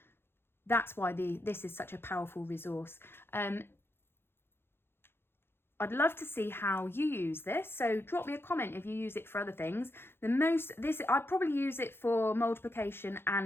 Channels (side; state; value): right; late; 0.11 ms